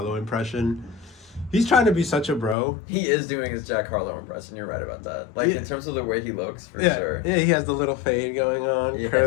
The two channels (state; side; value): drops out; right; at 2.6 s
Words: impression. He's trying to be such a bro. He is doing his Jack Harlow impression. You're right about that. Like, in terms of the way he looks, for sure. Yeah, he has the little fade going on,